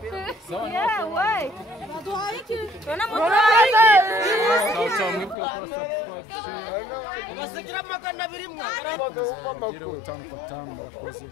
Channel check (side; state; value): right; drops out; at 5.4 s